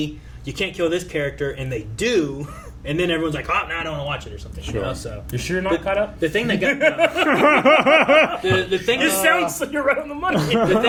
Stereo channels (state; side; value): identical; both; correlation 1.00